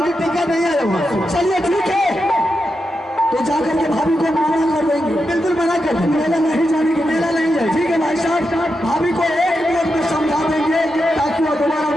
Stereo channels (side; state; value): both; normal; correlation 0.87